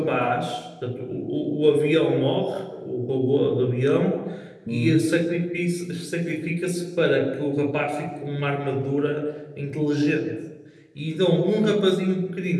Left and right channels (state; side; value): identical; both; correlation 1.00